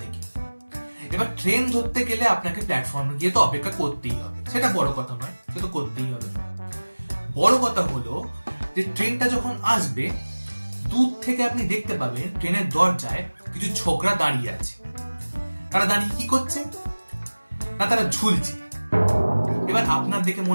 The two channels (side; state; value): both; inverted; correlation -1.00